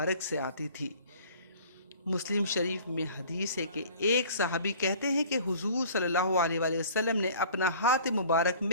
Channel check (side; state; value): both; inverted; correlation -0.48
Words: سے آتی تھی۔ مسلم شریف میں حدیث ہے کہ ایک صحابی کہتے ہیں کہ حضور صلی اللہ علیہ وآلہ وسلم نے اپنا ہاتھ مبارک